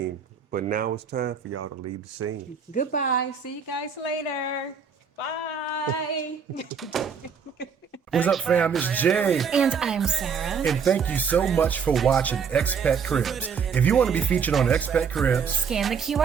but now it's time for y'all to leave the scene. Goodbye. See you guys later. Bye. What's up, fam? It's Jay. And I'm Sarah. And thank you so much for watching Expat Cribs. If you want to be featured on Expat Cribs, Scan the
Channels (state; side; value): quieter; left; 6.4 dB